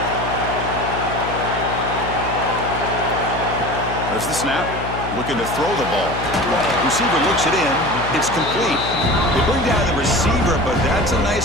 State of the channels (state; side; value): noise; left; hum, 7 dB below the sound